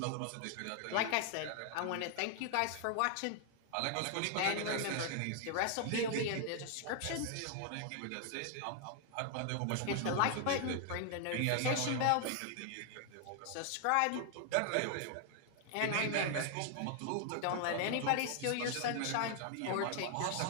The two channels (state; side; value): different; both; correlation 0.00